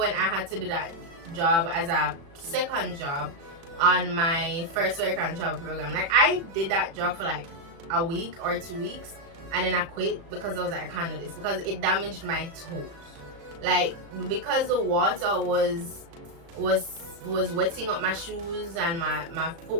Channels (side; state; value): left; late; 36 ms